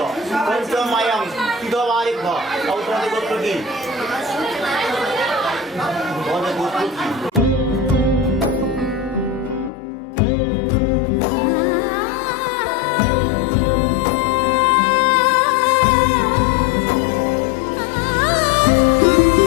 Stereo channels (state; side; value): drops out; right; at 9.7 s